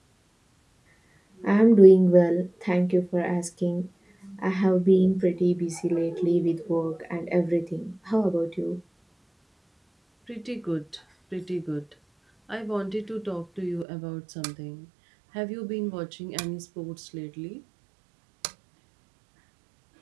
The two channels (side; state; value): left; drops out; at 13.9 s